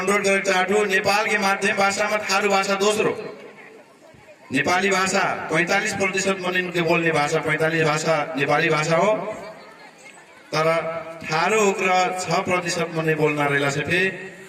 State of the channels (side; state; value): both; identical; correlation 1.00